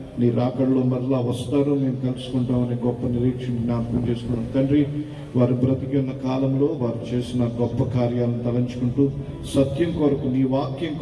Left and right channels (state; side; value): identical; both; correlation 1.00